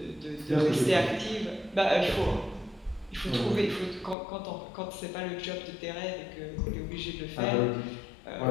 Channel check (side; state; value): right; drops out; at 4.2 s